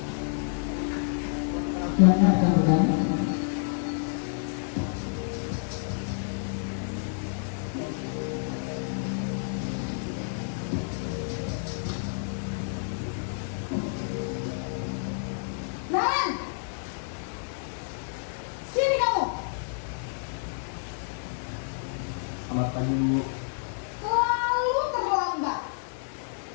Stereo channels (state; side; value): silent; right; digital silence